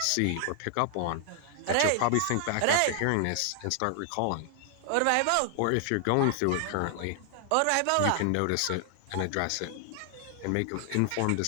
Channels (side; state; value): both; different; correlation 0.00